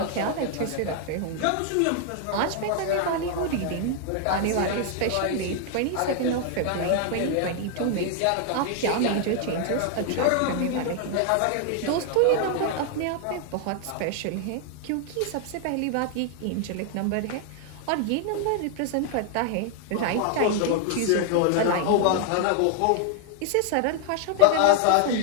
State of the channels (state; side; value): different; both; correlation 0.00